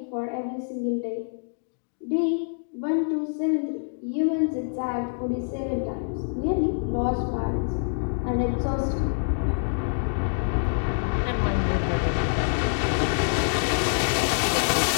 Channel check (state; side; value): silent; right; digital silence